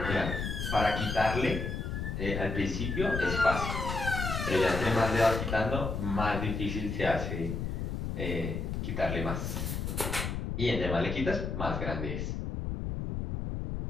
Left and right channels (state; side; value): noise; left; rumble, 3 dB below the sound